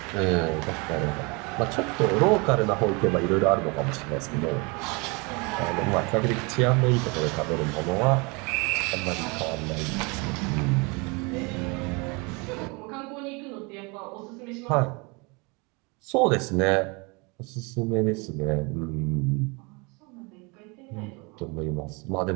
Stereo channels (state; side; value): quieter; left; 29.2 dB